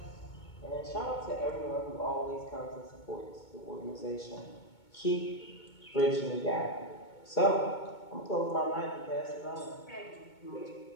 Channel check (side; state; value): right; late; 2.2 ms